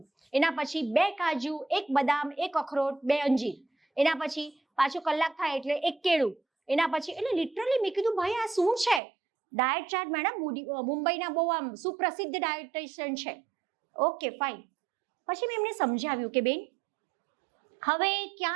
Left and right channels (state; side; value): drops out; left; at 9.0 s